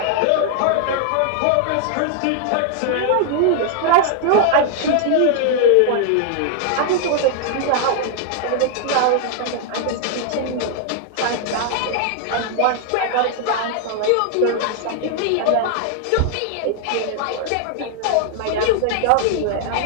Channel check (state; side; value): different; both; correlation 0.00